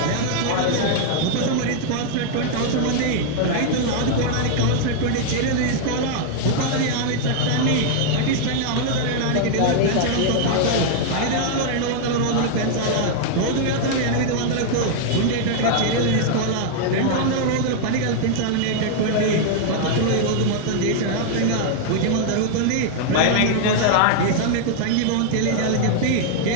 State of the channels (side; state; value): both; different; correlation 0.00